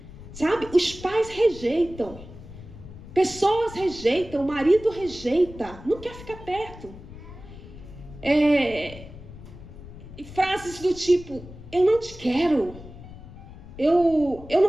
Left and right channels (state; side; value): noise; left; rumble, 15 dB below the sound